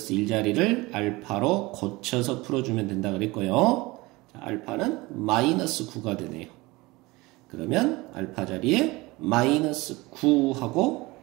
1자리를 알파로 고쳐서 풀어주면 된다 그랬고요. 자, 알파는 마이너스 9가 되네요. 그러면 알파 자리에 마이너스 9 하고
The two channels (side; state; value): left; quieter; 22.0 dB